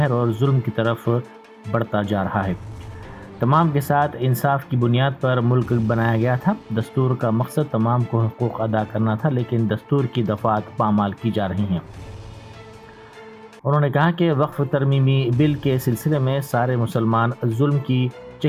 اور ظلم کی طرف بڑھتا جا رہا ہے۔ تمام کے ساتھ انصاف کی بنیاد پر ملک بنایا گیا تھا۔ دستور کا مقصد تمام کو حقوق ادا کرنا تھا، لیکن دستور کی دفعات پامال کی جا رہی ہیں۔ انہوں نے کہا کہ وقف ترمیمی بل کے سلسلے میں سارے مسلمان ظلم کی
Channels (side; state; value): both; identical; correlation 1.00